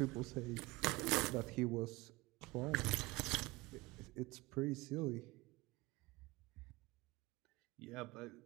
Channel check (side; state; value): left; quieter; 22.3 dB